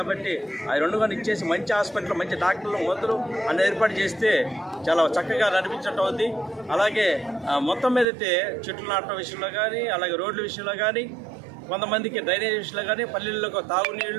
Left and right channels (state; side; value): drops out; left; at 8.1 s